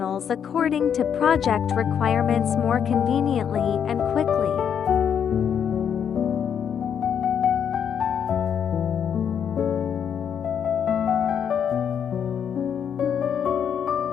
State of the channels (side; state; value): right; quieter; 8.1 dB